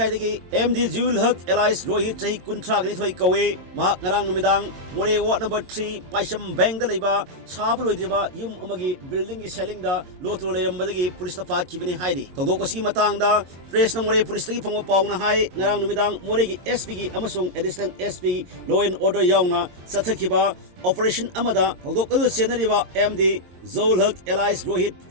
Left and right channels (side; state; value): left; late; 22 ms